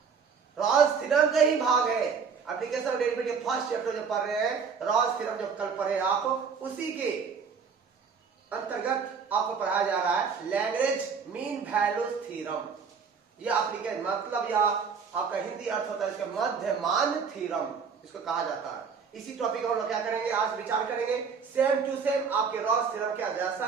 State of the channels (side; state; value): left; quieter; 5.9 dB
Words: रॉल्स थ्योरम का ही भाग है। Application of derivative first chapter जो पढ़ रहे हैं, रॉल्स थ्योरम जो कल पढ़े आप, उसी के अंतर्गत आपको पढ़ाया जा रहा है लैग्रेंज मीन वैल्यू थ्योरम। यह एप्लीकेशन मतलब या आपका हिंदी अर्थ होता है इसका मध्यमान थ्योरम, इसको कहा जाता है। इसी टॉपिक हम लोग क्या करेंगे, आज विचार करेंगे। सेम टू सेम आपके रॉल्स थ्योरम क्या जैसा